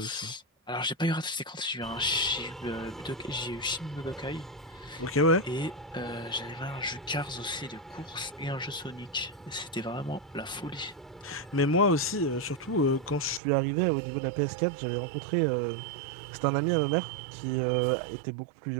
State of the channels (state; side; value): drops out; left; at 13.4 s